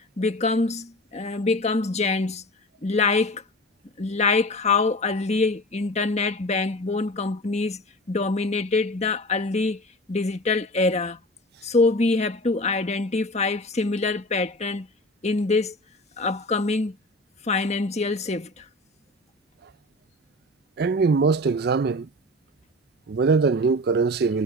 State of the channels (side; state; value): both; normal; correlation 0.35